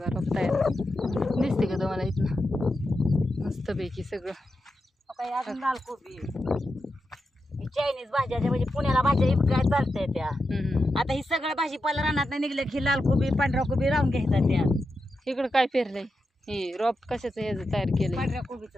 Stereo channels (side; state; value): both; normal; correlation 0.88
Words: रोप तयार. दिसते का तुम्हाला इथनं मस्तपैकी सगळं. काय अजून लाल कोबी चायनीज भाज्या म्हणजे पुण्याला भाज्या इतक्या चालतंय त्या. आता ही सगळं भाजीपाला रानात नाही निघलं की लाल कोबी पांढरा कोबी राहून घ्यायचा त्या. इकडं काय पेरलंय हे रोप कशाचं ह्याचं तयार केलंय. पांढऱ्या कोबीच